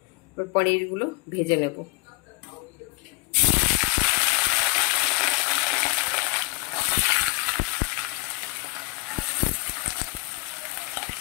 এবার পনিরগুলো ভেজে নেব।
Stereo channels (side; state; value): right; quieter; 25.7 dB